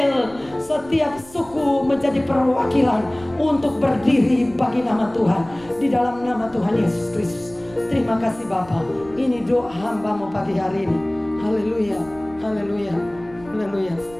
setiap suku menjadi perwakilan untuk berdiri bagi nama Tuhan, di dalam nama Tuhan Yesus Kristus. Terima kasih Bapa. Ini doa hamba-Mu pagi hari ini. Haleluya, haleluya, haleluya.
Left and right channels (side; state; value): right; noise; rumble, 22 dB below the sound